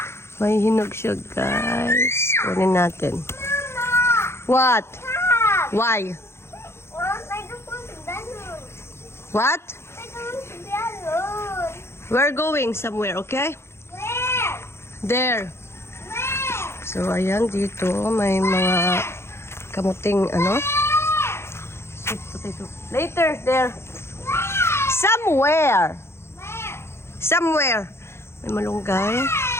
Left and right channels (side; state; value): right; late; 0.12 ms